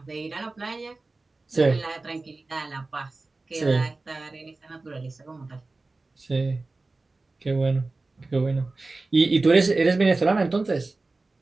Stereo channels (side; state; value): left; quieter; 3.4 dB